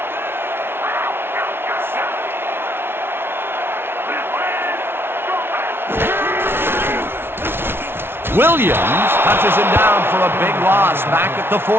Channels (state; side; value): late; left; 0.11 ms